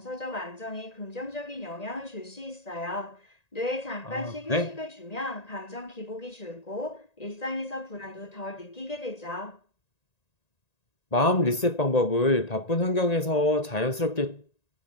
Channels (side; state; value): right; late; 1.9 ms